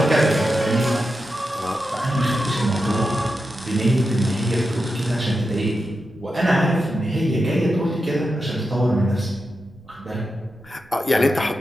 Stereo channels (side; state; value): right; noise; rumble, 27 dB below the sound